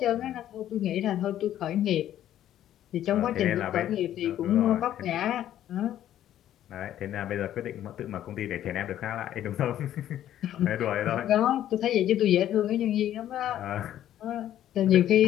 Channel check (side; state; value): right; quieter; 11.8 dB